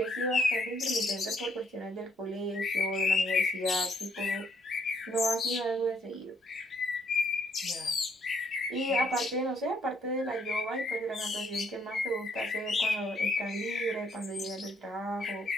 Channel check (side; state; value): both; normal; correlation 0.69